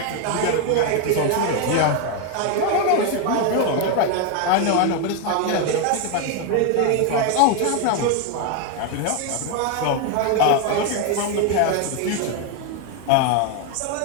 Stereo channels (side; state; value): both; different; correlation 0.01